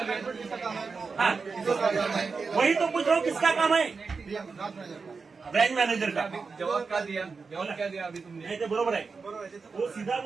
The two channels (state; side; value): quieter; left; 4.8 dB